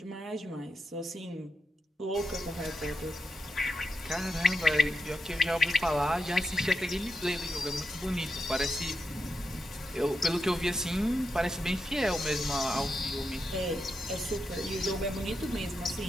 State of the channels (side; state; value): both; normal; correlation 0.86